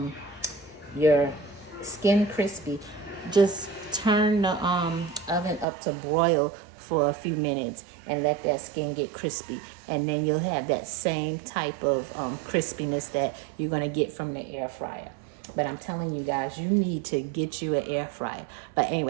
skin crispy, just turn the oven up to broil for a few minutes and let that skin get crispy, and then you'll have that same type of crispiness that you're going to get from the air fryer. But I'm telling you guys, you need to get you an air fryer. But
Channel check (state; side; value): drops out; left; at 5.7 s